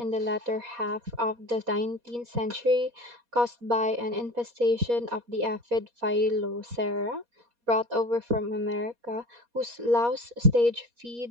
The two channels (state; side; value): late; left; 4.2 ms